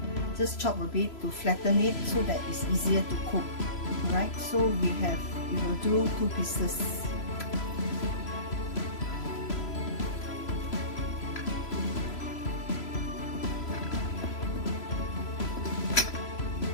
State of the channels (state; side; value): late; right; 3.0 ms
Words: just chop a bit to flatten it so that it's easier to cook, right? So we will do 2 pieces.